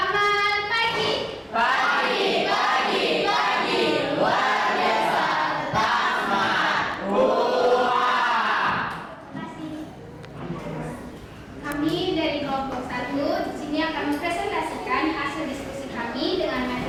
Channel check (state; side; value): identical; both; correlation 1.00